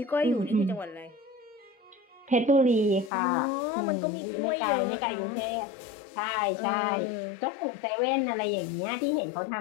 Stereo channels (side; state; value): right; drops out; at 3.1 s